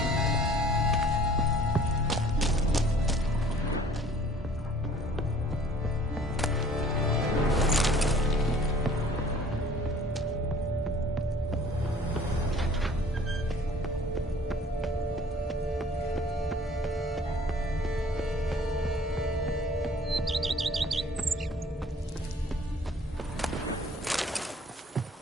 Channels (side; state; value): both; normal; correlation 0.53